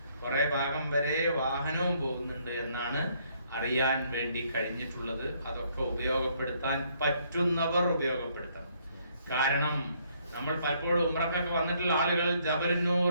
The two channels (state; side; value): inverted; both; correlation -0.68